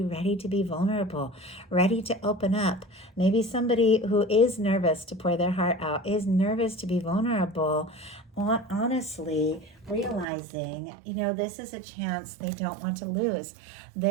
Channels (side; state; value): left; drops out; at 10.2 s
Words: ready to be vulnerable, ready to open up. Maybe somebody who is nervous to pour their heart out, is nervous to be vulnerable, honestly realizing, this is a chance they don't want to lose.